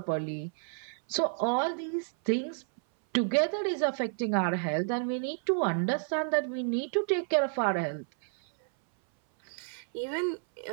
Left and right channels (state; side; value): silent; left; 58 dB below the other